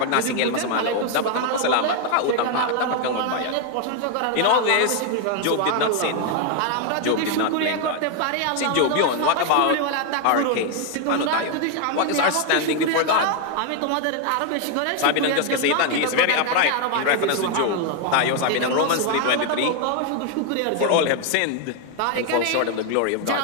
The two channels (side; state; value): both; different; correlation 0.01